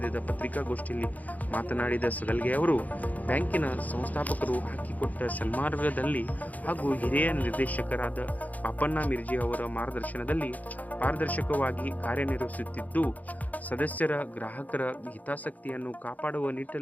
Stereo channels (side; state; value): right; late; 0.078 ms